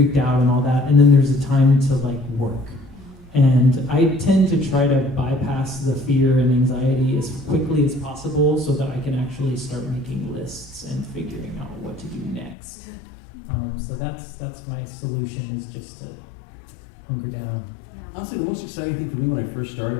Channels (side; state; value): right; drops out; at 12.6 s